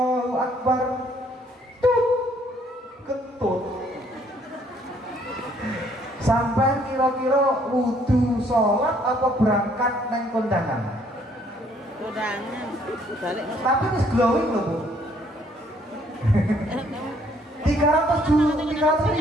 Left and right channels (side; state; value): both; normal; correlation 0.65